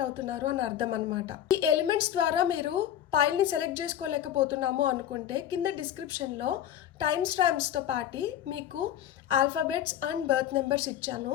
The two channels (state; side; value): quieter; right; 10.9 dB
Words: అవుతున్నారు అని అర్థం అనమాట. ఈ ఎలిమెంట్స్ ద్వారా మీరు పైల్ని సెలెక్ట్ చేసుకోలేకపోతున్నాము అనుకుంటే కింద డిస్క్రిప్షన్లో టైమ్ స్టాంప్స్తో పాటు మీకు ఆల్ఫాబెట్స్ అండ్ బర్త్ నెంబర్స్ ఇచ్చాను.